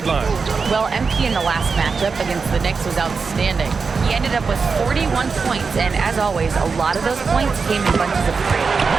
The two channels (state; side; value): quieter; left; 5.0 dB